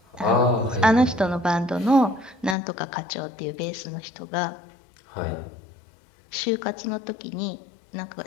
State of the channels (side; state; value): right; drops out; at 2.6 s